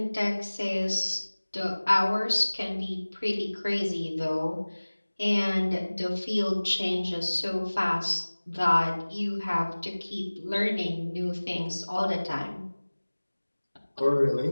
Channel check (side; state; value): both; inverted; correlation -1.00